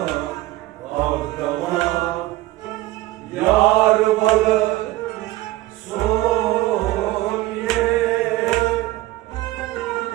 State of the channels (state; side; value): quieter; left; 17.5 dB